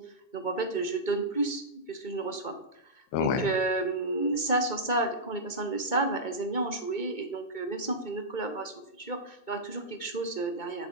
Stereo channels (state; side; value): late; right; 2.2 ms